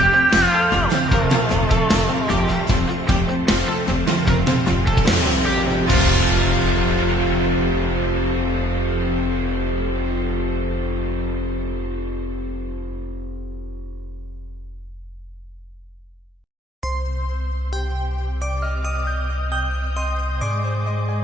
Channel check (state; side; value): normal; both; correlation 0.65